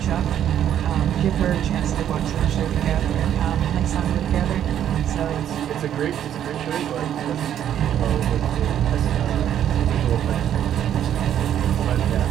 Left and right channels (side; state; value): left; quieter; 10.2 dB